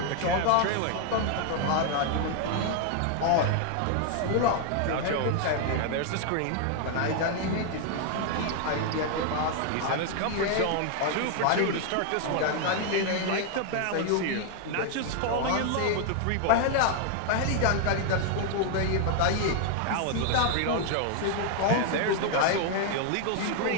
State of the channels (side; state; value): both; different; correlation 0.00